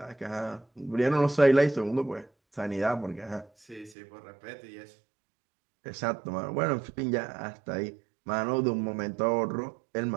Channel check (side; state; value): left; drops out; at 4.0 s